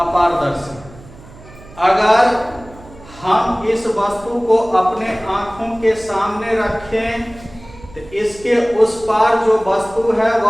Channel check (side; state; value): right; noise; hum, 20 dB below the sound